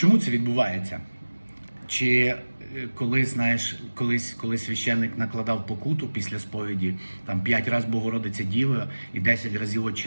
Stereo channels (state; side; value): inverted; both; correlation -1.00